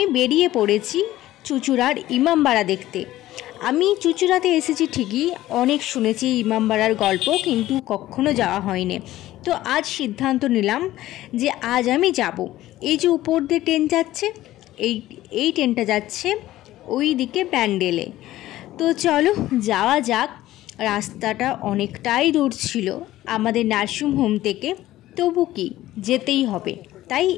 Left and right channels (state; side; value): quieter; right; 15.2 dB